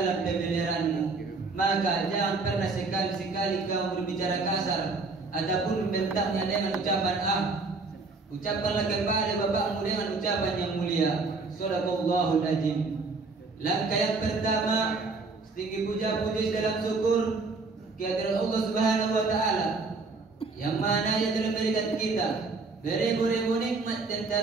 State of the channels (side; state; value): left; quieter; 3.9 dB